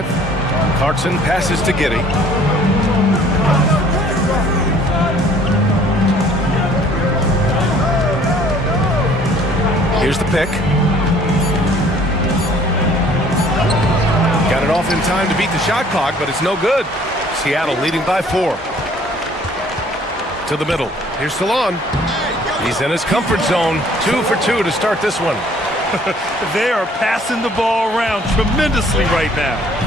Clarkson passes to Giddey. Here's the pick. in time to beat the shot clock, but it's no good. Seattle leading by 4. To the middle. Here's Salon. He's in his comfort zone. 2 for 2 to start this one. They are passing the ball around tremendously right now.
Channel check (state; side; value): normal; both; correlation 0.56